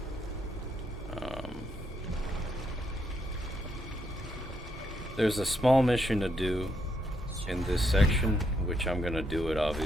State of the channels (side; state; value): both; normal; correlation 0.77